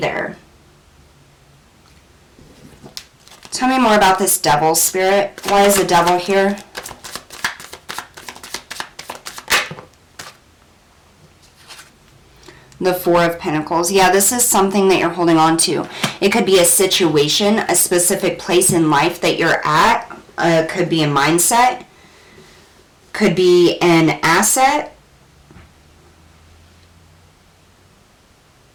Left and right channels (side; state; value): both; identical; correlation 1.00